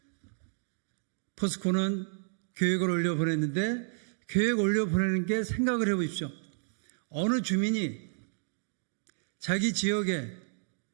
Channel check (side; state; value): left; silent; digital silence